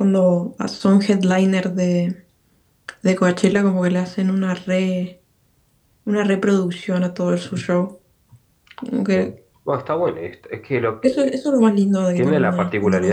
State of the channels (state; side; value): identical; both; correlation 1.00